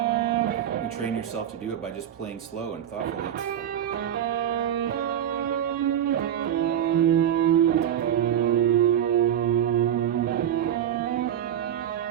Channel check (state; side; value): quieter; left; 10.3 dB